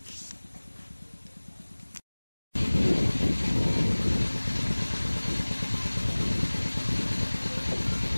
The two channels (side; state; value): both; inverted; correlation -1.00